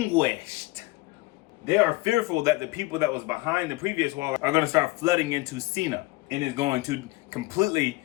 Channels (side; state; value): right; quieter; 21.0 dB